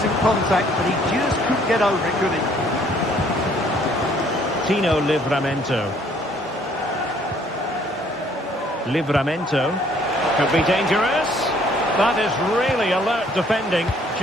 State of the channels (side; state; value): both; normal; correlation 0.61